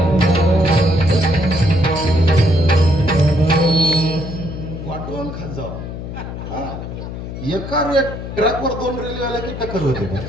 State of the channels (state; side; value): noise; left; hum, 8 dB below the sound